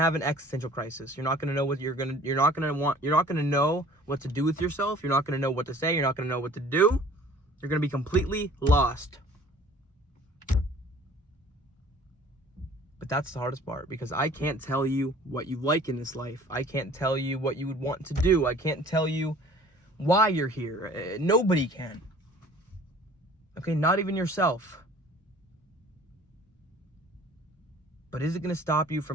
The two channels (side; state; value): both; normal; correlation 0.50